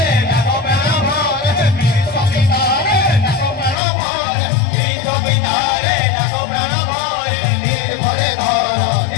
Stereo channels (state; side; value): drops out; right; at 3.8 s